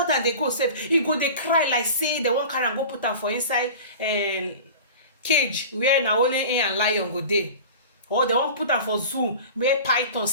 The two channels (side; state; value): both; inverted; correlation -0.36